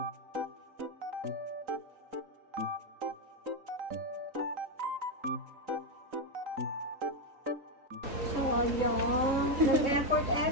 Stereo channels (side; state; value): left; late; 3.9 ms